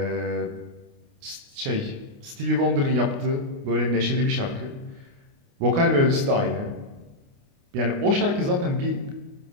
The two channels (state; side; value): late; left; 29 ms